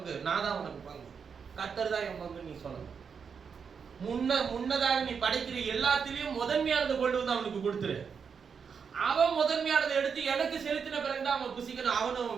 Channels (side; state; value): left; quieter; 6.3 dB